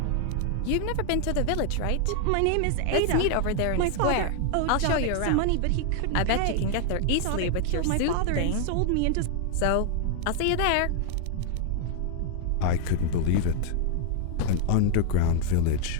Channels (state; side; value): different; both; correlation 0.00